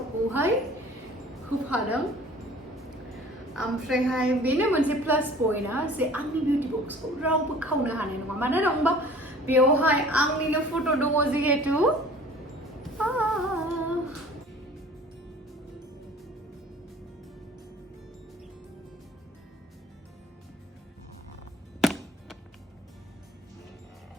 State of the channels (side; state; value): both; normal; correlation 0.47